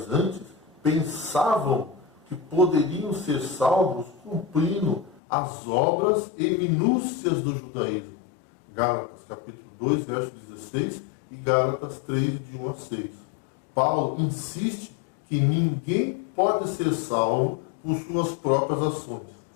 pensavam que poderiam ser salvos cumprindo as obras e minúcias do judaísmo. Gálatas capítulo 2, verso 16 e Gálatas 3, de 1 a 6. Paulo insiste que ninguém pode ser salvo por suas próprias ações,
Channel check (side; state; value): right; drops out; at 5.2 s